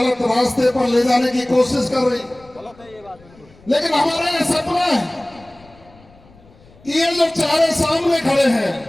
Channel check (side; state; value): left; noise; rumble, 27 dB below the sound